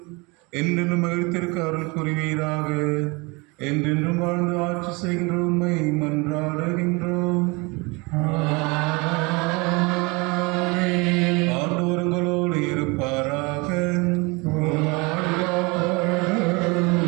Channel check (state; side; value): quieter; left; 27.2 dB